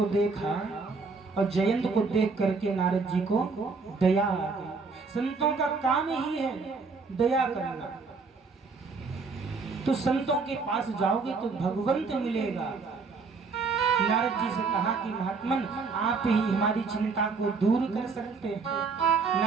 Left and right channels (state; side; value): quieter; left; 4.5 dB